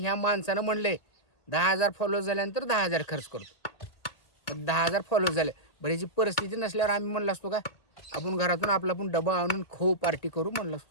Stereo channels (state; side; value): late; right; 1.8 ms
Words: माणसानं म्हणले 10,000 फॉलो झाल्यानंतर 10,000 खर्च करतो. 10,000 फॉलो झाले. बरं ह्याची परिस्थिती नसल्यावर आम्ही म्हणलं असतो का आपण घरातून आपला पण डबा आणून खाऊ पार्टी करू म्हणलं